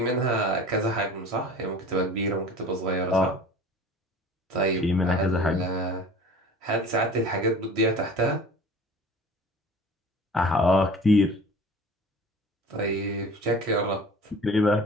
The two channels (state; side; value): normal; both; correlation 0.42